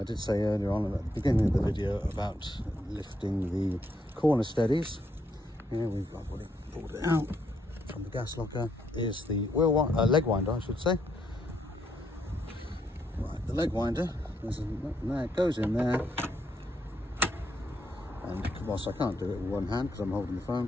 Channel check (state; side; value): normal; both; correlation 0.76